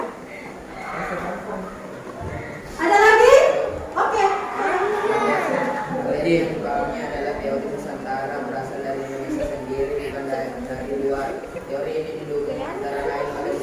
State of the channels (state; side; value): identical; both; correlation 1.00